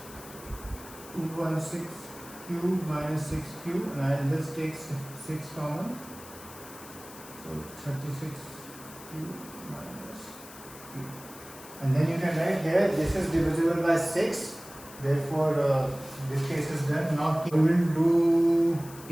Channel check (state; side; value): noise; left; hiss, 17 dB below the sound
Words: 216 q minus 6q, and I will just take 6 common. So 36 q minus q. And then you can write here, this is divisible by 6. Therefore, this case is done. Now we will do